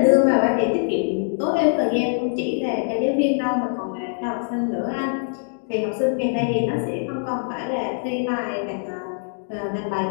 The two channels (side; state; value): right; silent; digital silence